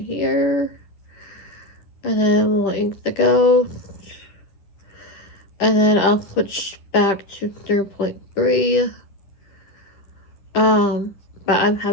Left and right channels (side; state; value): right; late; 10 ms